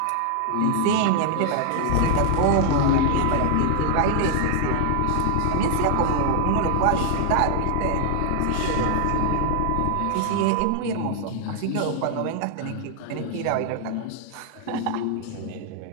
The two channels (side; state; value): both; different; correlation 0.00